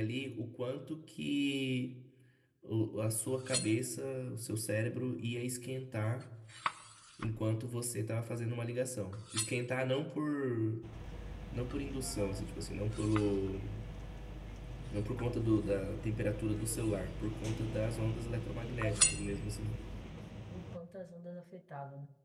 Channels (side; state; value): both; identical; correlation 1.00